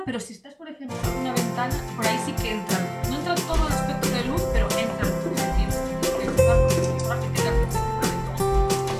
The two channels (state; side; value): identical; both; correlation 1.00